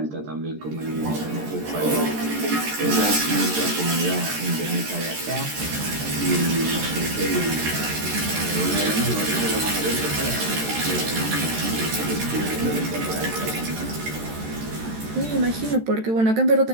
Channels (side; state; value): left; late; 13 ms